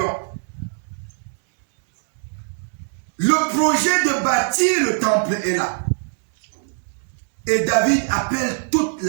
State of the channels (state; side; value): silent; left; digital silence